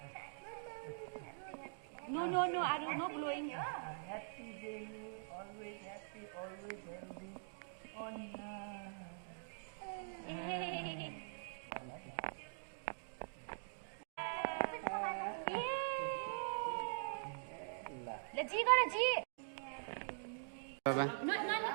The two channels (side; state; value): left; silent; digital silence